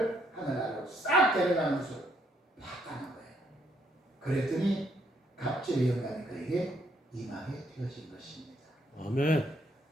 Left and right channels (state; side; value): normal; both; correlation 0.72